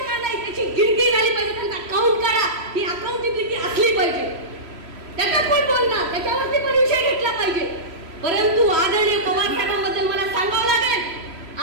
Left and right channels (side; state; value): left; late; 3.1 ms